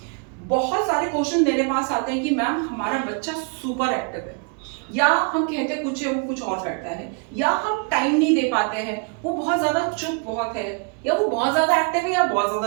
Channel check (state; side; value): quieter; left; 36.0 dB